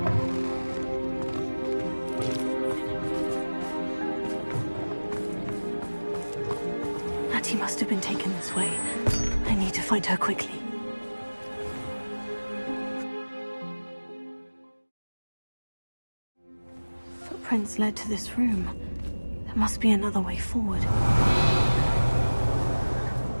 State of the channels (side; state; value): both; inverted; correlation -1.00